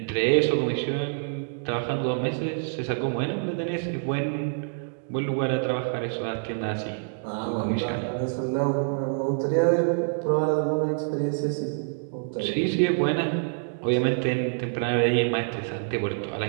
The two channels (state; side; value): silent; left; digital silence